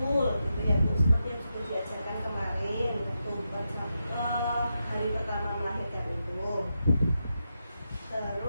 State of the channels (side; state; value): both; inverted; correlation -0.87